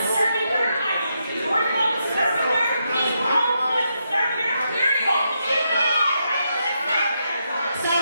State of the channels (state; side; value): inverted; both; correlation -0.82